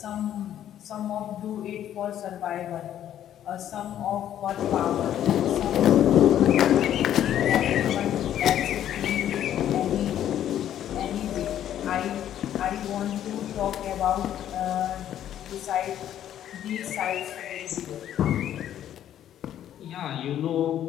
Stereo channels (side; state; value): right; quieter; 11.0 dB